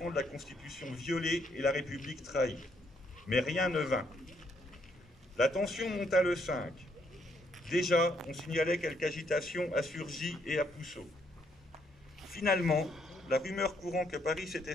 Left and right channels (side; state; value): both; normal; correlation 0.72